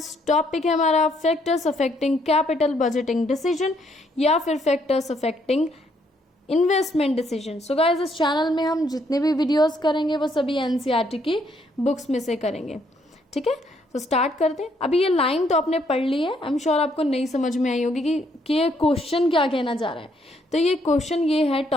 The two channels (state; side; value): normal; both; correlation 0.71